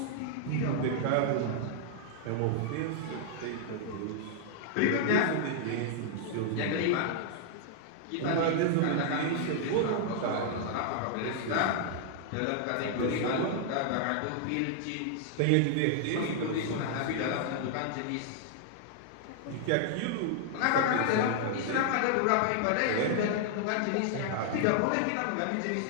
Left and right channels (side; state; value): both; different; correlation -0.01